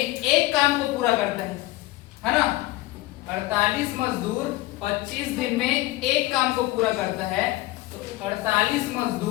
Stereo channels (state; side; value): quieter; right; 18.2 dB